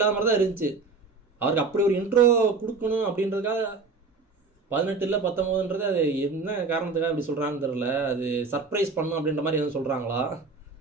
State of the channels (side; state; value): left; quieter; 4.2 dB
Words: மாதிரி தான் இருந்துச்சு. அவருக்கு அப்படி ஒரு இன்ட்ரோ கொடுக்கணும் அப்படின்றதுக்காக 18 இல்லை 19ன்றது அது என்ன காரணத்துக்காக அப்படி சொல்கிறான்னு தெரில. அது சர்ப்ரைஸ் பண்ணும் அப்படின்ற மாதிரி எதுவும் சொல்கிறாங்களா,